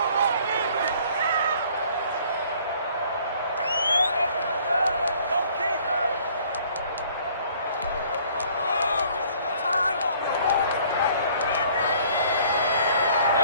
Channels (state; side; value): inverted; both; correlation -0.58